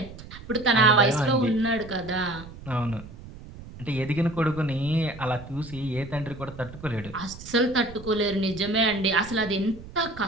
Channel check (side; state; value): right; noise; rumble, 15 dB below the sound